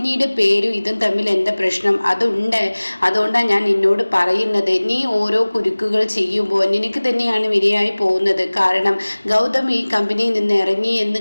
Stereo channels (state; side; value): inverted; both; correlation -1.00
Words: പേരും ഇതും തമ്മിൽ എന്താ പ്രശ്നം? അതുണ്ട്, അതുകൊണ്ടാണ് ഞാൻ നിന്നോട് പറയുന്നത്. നീ ഓരോ കുരുക്കുകൾ ചെയ്യുമ്പോൾ നിനക്ക് തന്നെയാണ് വിനയായി പോകുന്നത്. കാരണം ഗൗതം ഈ കമ്പനിയിൽ നിന്ന് ഇറങ്ങി